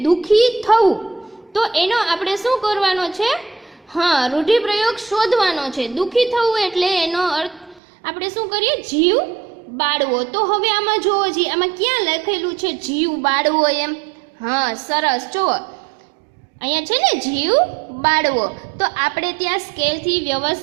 દુઃખી થવું. તો એનો આપણે શું કરવાનો છે? હા, રૂઢિપ્રયોગ શોધવાનો છે. દુઃખી થવું એટલે એનો અર્થ આપણે શું કરીએ? જીવ બાળવો. તો હવે આમાં જુઓ જી, આમાં ક્યાં લખેલું છે જીવ બાળવો એમ? હા સરસ, જુઓ અહીંયા છે ને જીવ બાળવો. તો આપણે ત્યાં સ્કેલથી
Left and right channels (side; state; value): left; drops out; at 7.8 s